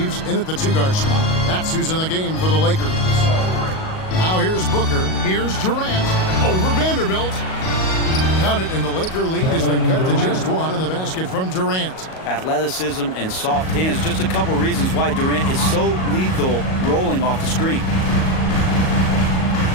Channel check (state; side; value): late; right; 38 ms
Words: in at the two-guard spot. That's who's in the game for the Lakers. Now here's Booker. Here's Durant over Vanderbilt. Count it, and the Laker lead has been cut to just 1 on the basket from Durant. Athleticism and soft hands, just a couple reasons why Durant is so lethal rolling off the screen.